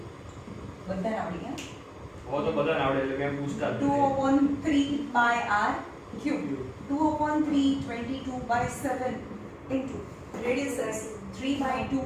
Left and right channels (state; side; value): identical; both; correlation 1.00